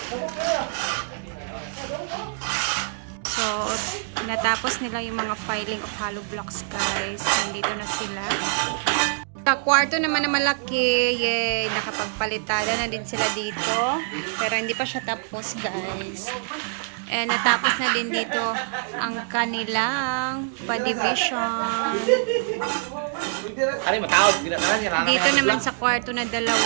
So, natapos nila yung mga filing of hollow blocks, guys. Nandito na sila. Sa kwarto naman na malaki, yay, nakapagpalitada na din sila dito. Pero hindi pa siya tapos, guys. And natapos na din dito ang kanilang pa-division. Dito naman sa kwarto na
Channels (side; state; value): left; silent; digital silence